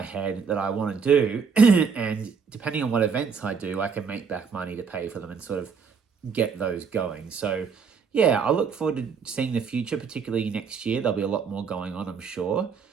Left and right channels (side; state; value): left; quieter; 5.8 dB